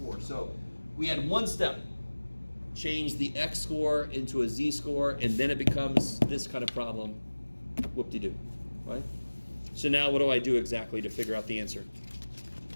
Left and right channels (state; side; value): inverted; both; correlation -1.00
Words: So we had one step, change the X score into a Z score, and then it becomes this kind of problem. Whoop-de-doo, right? So now what do I do exactly to figure out the answer?